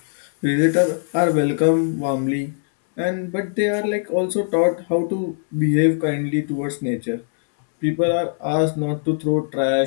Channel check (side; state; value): right; silent; digital silence